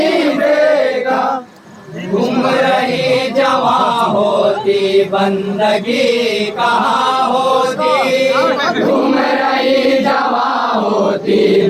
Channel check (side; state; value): both; identical; correlation 1.00